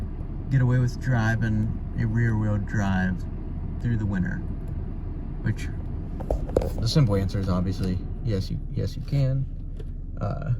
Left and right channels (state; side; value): identical; both; correlation 1.00